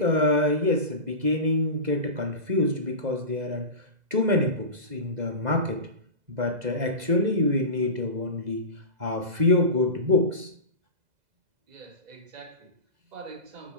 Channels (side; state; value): left; late; 2.0 ms